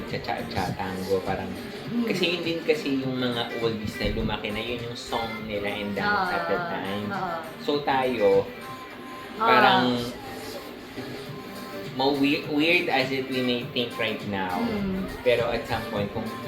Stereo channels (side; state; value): both; identical; correlation 1.00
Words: parang, kasi yun din kasi yung mga oldies na lumaki na yun yung song nila and dance at the time. So tayo, parang, weird as it we may think right now, pero at some point, kung